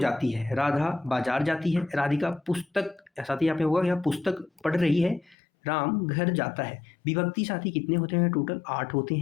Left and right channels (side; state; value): right; drops out; at 5.4 s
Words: है, राधा बाजार जाती है, राधिका पुस्तक, साथी यहाँ पे होगा या पुस्तक पढ़ रही है, राम घर जाता है। विभक्ति साथी कितने होते हैं? टोटल 8 होते